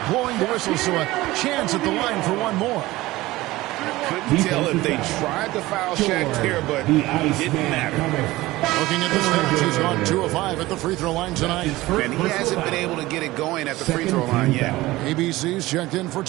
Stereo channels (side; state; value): left; quieter; 18.4 dB